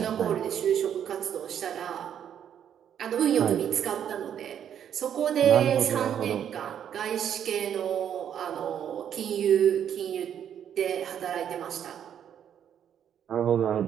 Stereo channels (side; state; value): left; quieter; 9.2 dB